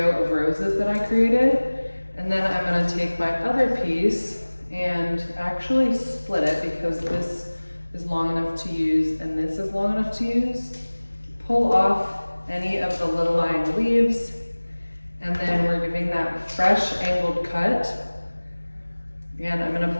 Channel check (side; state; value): both; inverted; correlation -1.00